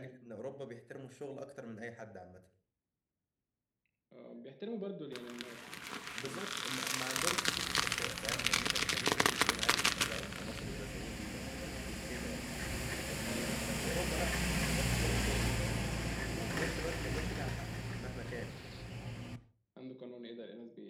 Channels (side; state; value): both; identical; correlation 1.00